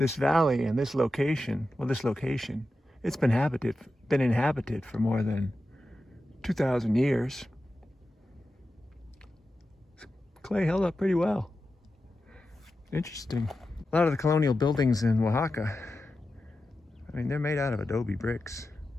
valley and this location, it's been inhabited for more than 2,000 years. Clay held up pretty well. Interesting. A lot of the colonial buildings in Oaxaca, I mean, they're made out of adobe bricks.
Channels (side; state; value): both; normal; correlation 0.91